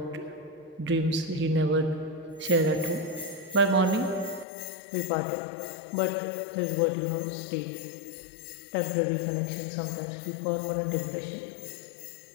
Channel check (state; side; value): drops out; right; at 4.5 s